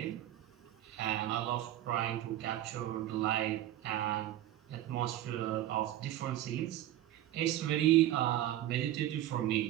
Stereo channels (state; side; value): quieter; left; 13.4 dB